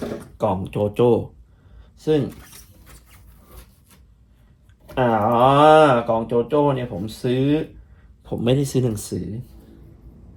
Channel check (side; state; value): both; identical; correlation 1.00